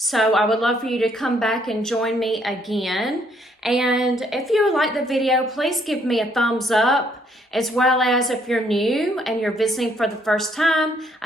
I would love for you to come back and join me again. And if you like the video, please give me a thumbs up. As well as if you're new and you're visiting for the first time,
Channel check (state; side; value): normal; both; correlation 0.68